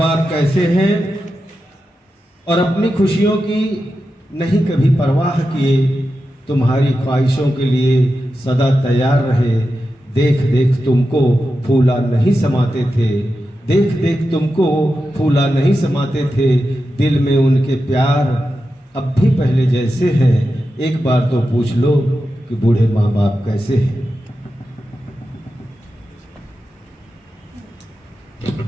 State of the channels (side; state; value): both; normal; correlation 0.90